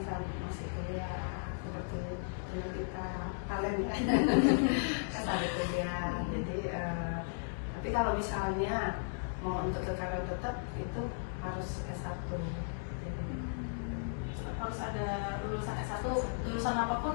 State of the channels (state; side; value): silent; right; digital silence